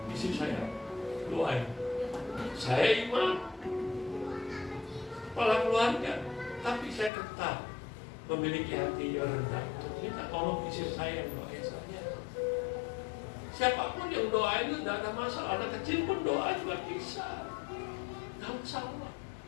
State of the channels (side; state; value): right; drops out; at 7.1 s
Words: istri saya doain. Saya imam, kepala keluarga, tapi saya tetap memiliki hati yang rendah untuk minta tolong istri saya yang doain saya. Siapapun yang doain itu tidak ada masalah. Anak kecil pun doa juga bisa, tidak masalah.